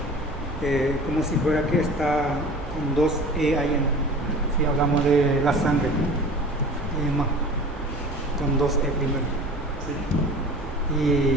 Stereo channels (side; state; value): both; normal; correlation 0.41